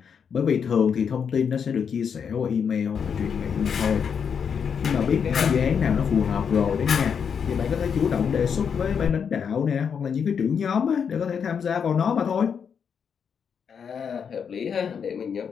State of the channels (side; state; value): right; quieter; 6.9 dB